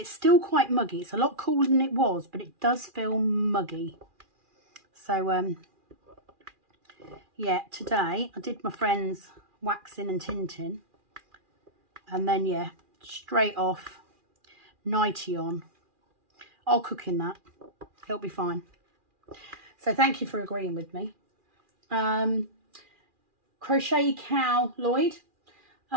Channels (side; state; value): left; late; 2.4 ms